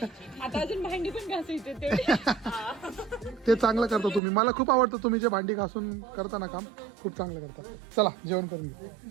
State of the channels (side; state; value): left; drops out; at 4.2 s